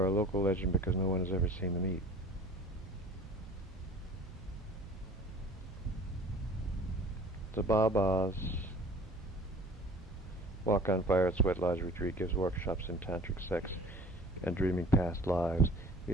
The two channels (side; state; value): both; normal; correlation 0.46